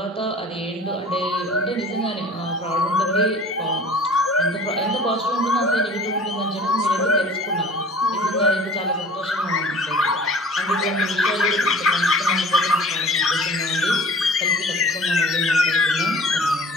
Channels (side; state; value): both; normal; correlation 0.45